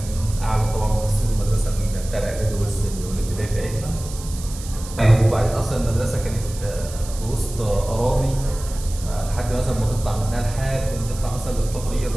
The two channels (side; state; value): right; noise; hiss, 14 dB below the sound